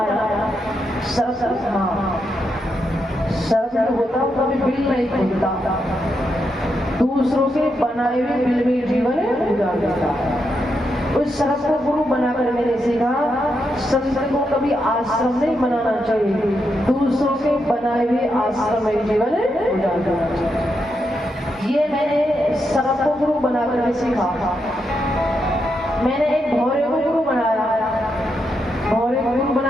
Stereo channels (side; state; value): both; normal; correlation 0.83